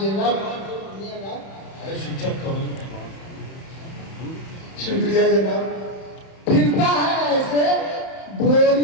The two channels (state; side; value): late; right; 31 ms